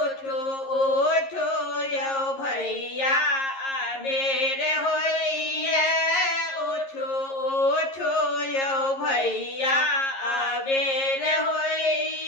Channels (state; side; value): late; right; 11 ms